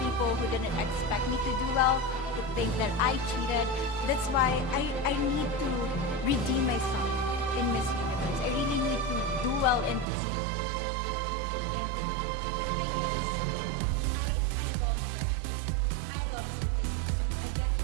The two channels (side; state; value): left; drops out; at 10.1 s